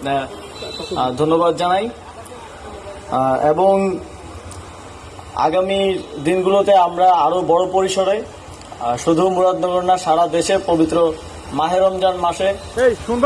ধন্যবাদ জানাই। এবং আগামী দিনগুলোতে আমরা আরো বড় পরিসরে শুধু মুরাদনগর না, সারা দেশে পবিত্র মাহে রমজান মাসে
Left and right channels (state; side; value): identical; both; correlation 1.00